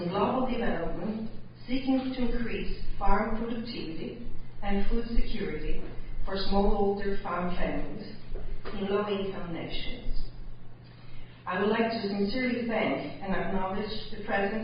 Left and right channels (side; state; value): both; identical; correlation 1.00